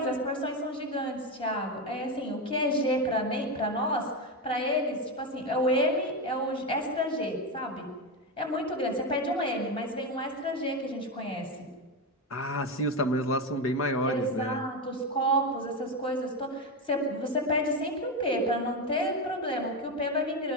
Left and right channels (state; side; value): normal; both; correlation 0.13